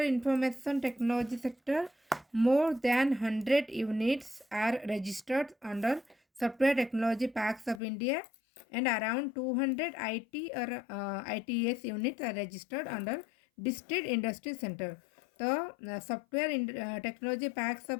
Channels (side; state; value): right; drops out; at 7.8 s